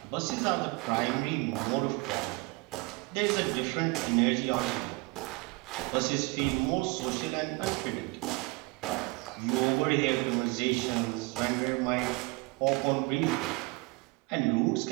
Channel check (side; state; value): left; quieter; 26.0 dB